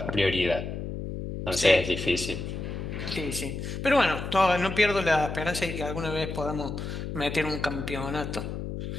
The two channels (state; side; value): noise; left; hum, 6 dB below the sound